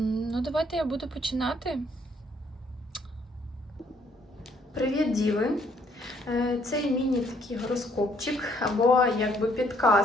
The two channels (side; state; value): both; normal; correlation 0.66